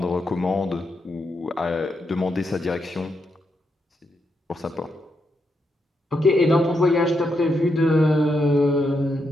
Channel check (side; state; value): both; normal; correlation 0.82